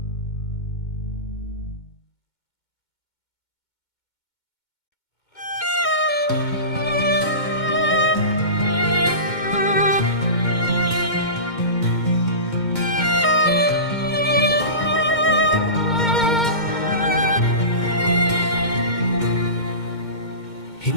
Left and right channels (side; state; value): right; late; 2.2 ms